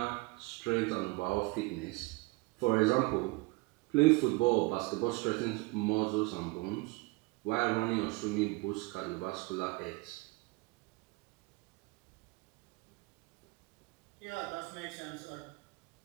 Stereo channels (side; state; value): left; quieter; 24.8 dB